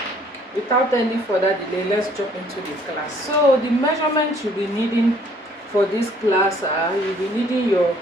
Without any further delay, let's jump into the class. So the measurements you'll be needing for this class are, you'll be needing your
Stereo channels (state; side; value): normal; both; correlation 0.60